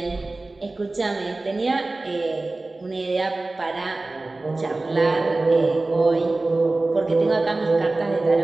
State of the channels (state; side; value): quieter; left; 3.1 dB